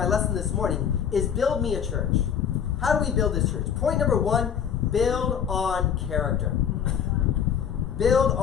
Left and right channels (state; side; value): quieter; right; 8.2 dB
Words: lesson this morning is Build Me a Church. How do we build this church? Point number 1, build on character. Build